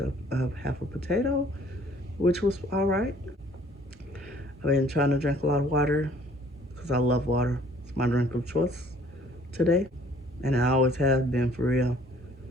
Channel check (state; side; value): normal; both; correlation 0.57